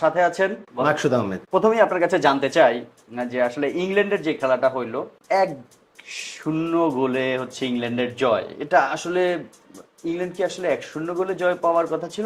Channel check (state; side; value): identical; both; correlation 1.00